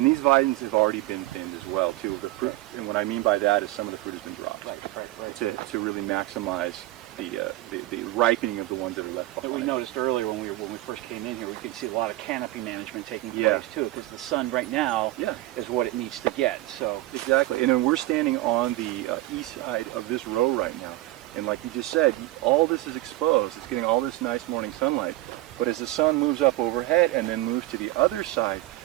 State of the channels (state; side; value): quieter; left; 17.4 dB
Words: these vines have already been thinned as well too. The fruit, and what I mean by that is some of the fruit has been dropped. Right. To really maximize the ripening of the ones that are left behind. But we noticed earlier when we first came in here, we could see a lot of canopy management taking place too, because the sun right now is what it needs to get. So exactly, and then we're standing on the east side of this row right now, and like you just said, all this is exposed. It's getting all this nice morning sunlight. But as the sun moves up overhead and then moves to the other side